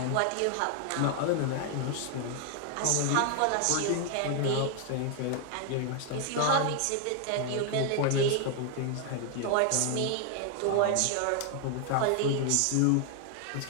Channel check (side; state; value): both; different; correlation 0.00